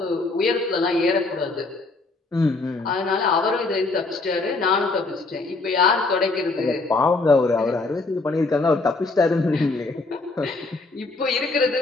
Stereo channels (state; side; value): quieter; right; 3.5 dB